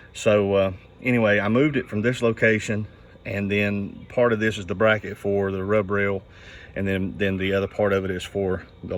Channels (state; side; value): identical; both; correlation 1.00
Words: so anyway, I moved it from this location, and then part of this is the bracket for the rub rail, and then the other part of it is for the